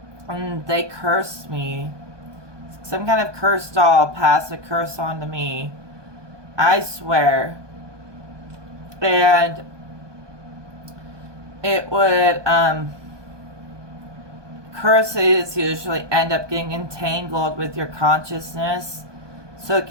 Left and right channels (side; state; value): left; late; 1.2 ms